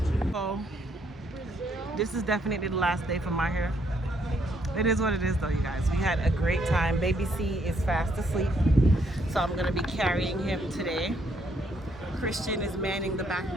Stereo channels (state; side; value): normal; both; correlation 0.71